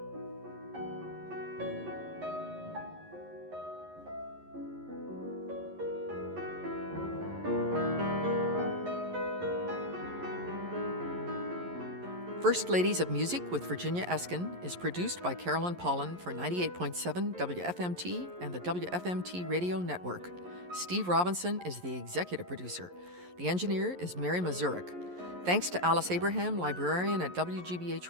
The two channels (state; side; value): late; left; 11 ms